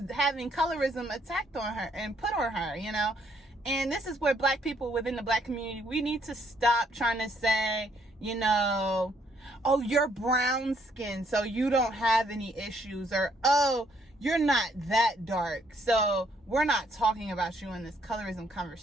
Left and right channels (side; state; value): both; normal; correlation 0.69